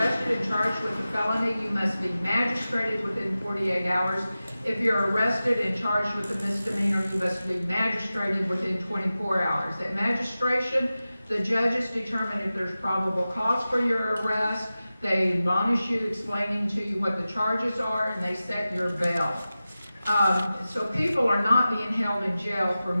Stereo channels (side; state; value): both; inverted; correlation -0.95